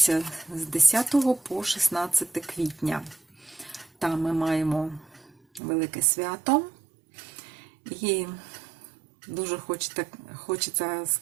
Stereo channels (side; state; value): left; drops out; at 5.6 s